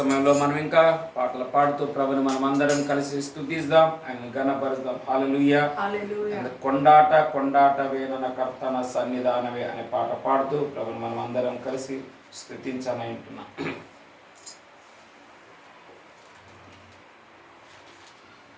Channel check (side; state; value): both; identical; correlation 1.00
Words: మనం ఇంకా పాటలు పాడుతూ ప్రభుని మనం అందరం కలిసి స్తుతిద్దాం, ఆయన ఘనపరుద్దాం. హల్లెలూయా. హల్లెలూయా. కొండాట కొండాటవే నన్న కర్తన సన్నిధానవే అనే పాట పాడుతూ ప్రభుని మనం అందరం కలిసి స్తుతించని అంటున్నాం.